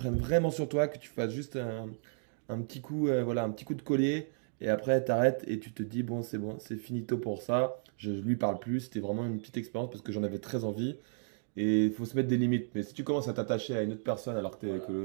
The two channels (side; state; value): left; silent; digital silence